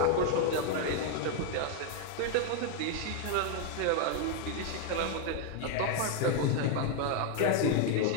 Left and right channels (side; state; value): both; different; correlation 0.01